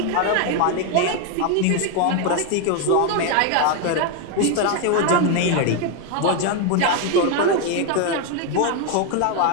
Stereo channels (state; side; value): different; both; correlation 0.01